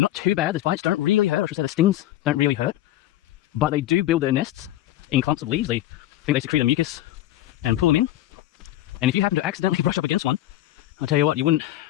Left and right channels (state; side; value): quieter; right; 14.3 dB